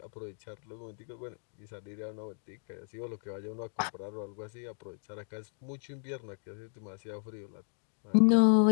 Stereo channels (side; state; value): right; silent; 55 dB below the other